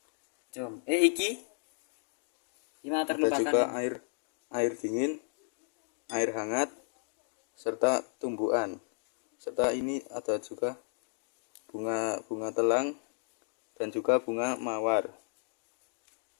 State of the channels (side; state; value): right; silent; 55 dB below the other